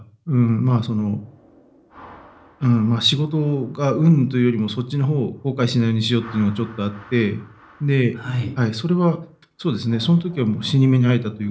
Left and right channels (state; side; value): identical; both; correlation 1.00